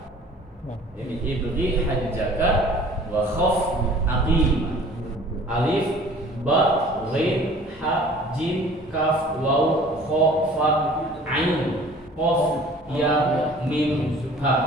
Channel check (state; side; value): normal; both; correlation 0.49